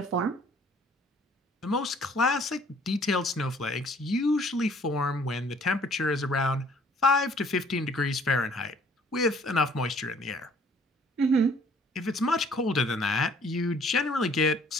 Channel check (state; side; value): normal; both; correlation 0.58